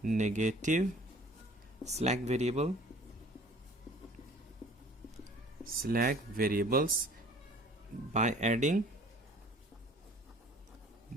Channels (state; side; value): normal; both; correlation 0.50